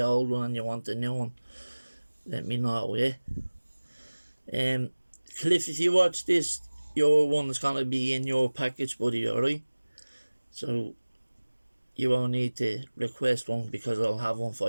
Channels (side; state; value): both; inverted; correlation -1.00